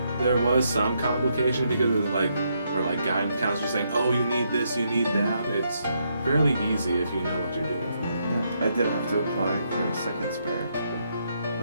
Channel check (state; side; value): inverted; both; correlation -0.77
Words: there was some complication because of like, or like guidance counselors saying, oh, you need this, you need that. It's fairly easy if you know what you're doing for it. I did have to apply for a second spare,